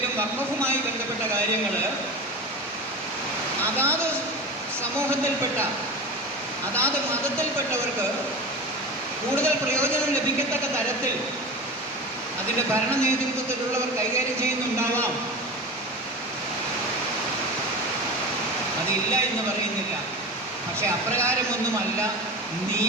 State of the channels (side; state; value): both; normal; correlation 0.29